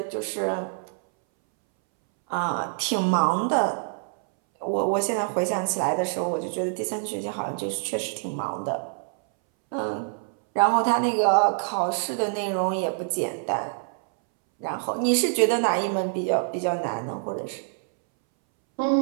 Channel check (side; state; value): left; silent; 61 dB below the other